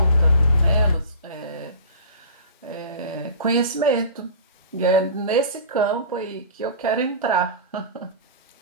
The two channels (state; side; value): inverted; both; correlation -0.37